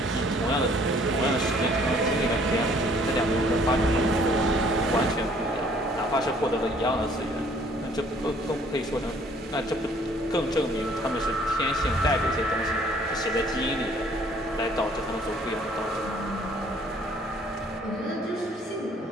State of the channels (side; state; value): both; normal; correlation 0.59